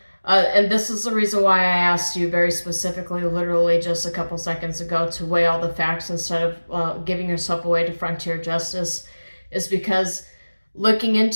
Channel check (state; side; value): inverted; both; correlation -1.00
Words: And this is the reason why I asked you very specifically, literally just a couple seconds ago, to weigh all the facts instead of giving yourself away to frontier justice, is because looking